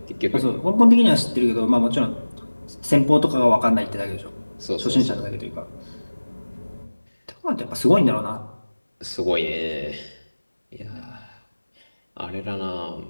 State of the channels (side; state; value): both; inverted; correlation -1.00